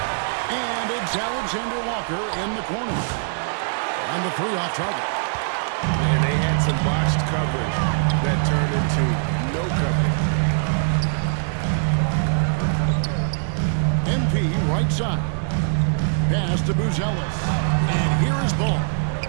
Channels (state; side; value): silent; left; digital silence